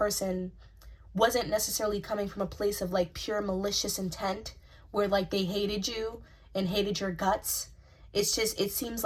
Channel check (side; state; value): both; identical; correlation 1.00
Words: wasn't necessarily coming from a place of like pure malicious intent where like they hated you and hated your guts. It's just, it seems